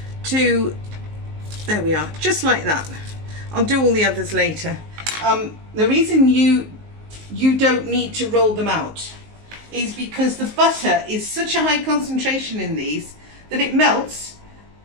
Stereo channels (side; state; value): left; late; 19 ms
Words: to, there we are, just like that. I'll do all the others later. The reason you don't need to roll them out is because the butter is such a high concentration in these that it melts